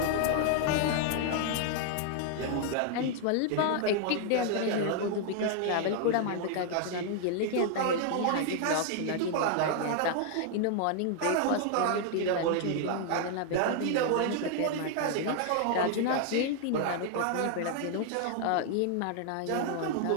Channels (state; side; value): different; both; correlation 0.00